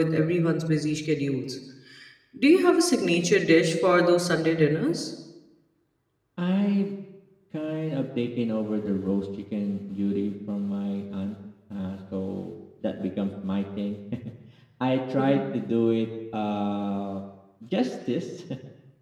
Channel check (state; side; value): identical; both; correlation 1.00